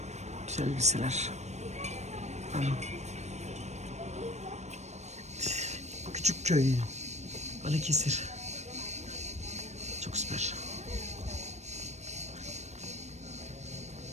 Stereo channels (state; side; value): late; left; 0.33 ms